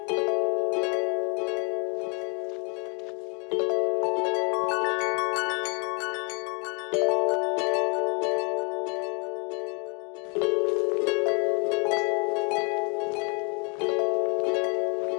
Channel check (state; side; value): quieter; right; 34.9 dB